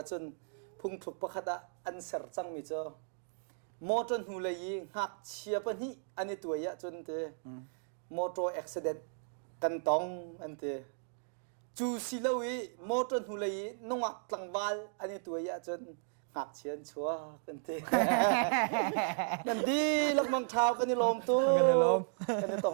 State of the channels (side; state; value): left; silent; digital silence